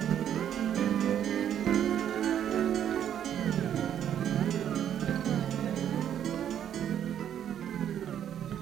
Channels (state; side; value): quieter; left; 9.8 dB